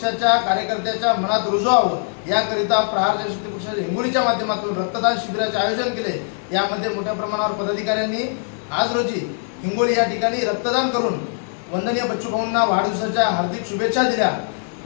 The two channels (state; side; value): silent; right; 63 dB below the other